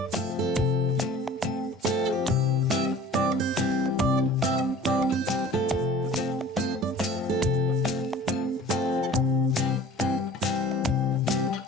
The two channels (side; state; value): both; normal; correlation 0.46